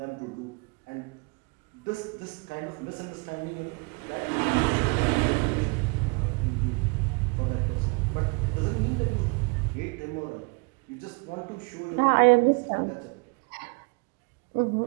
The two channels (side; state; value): left; quieter; 30.7 dB